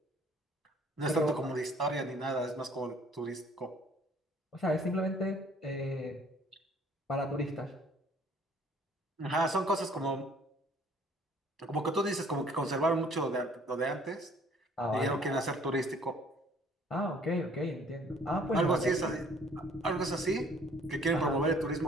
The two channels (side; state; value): both; normal; correlation 0.57